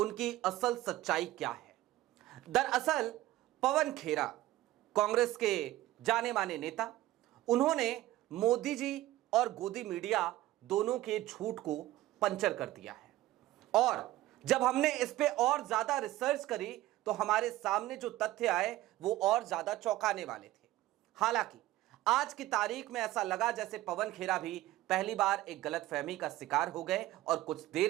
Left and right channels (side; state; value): left; quieter; 16.0 dB